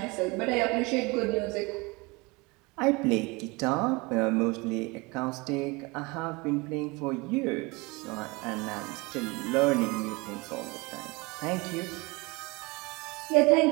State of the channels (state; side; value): quieter; left; 25.5 dB